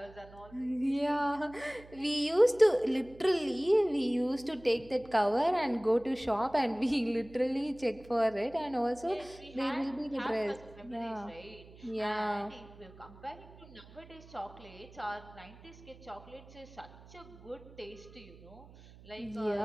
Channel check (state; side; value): noise; right; hum, 20 dB below the sound